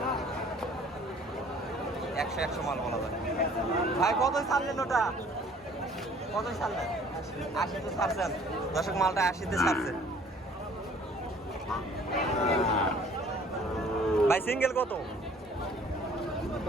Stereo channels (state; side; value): normal; both; correlation 0.54